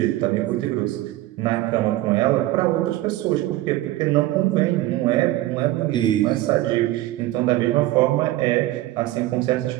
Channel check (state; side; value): quieter; left; 16.4 dB